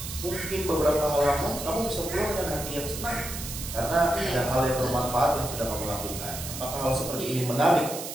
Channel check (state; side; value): noise; right; hiss, 8 dB below the sound